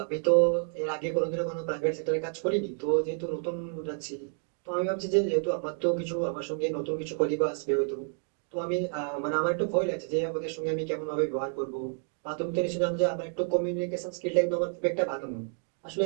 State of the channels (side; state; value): left; silent; 58 dB below the other